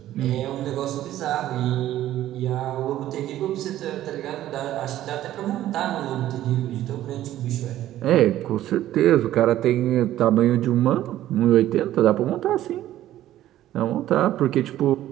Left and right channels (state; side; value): quieter; left; 13.4 dB